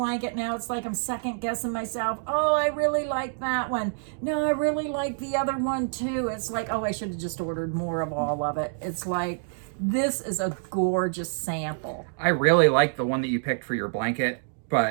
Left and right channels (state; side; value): silent; left; digital silence